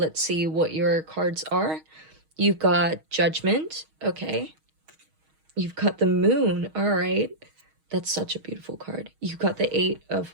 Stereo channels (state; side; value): late; left; 6.3 ms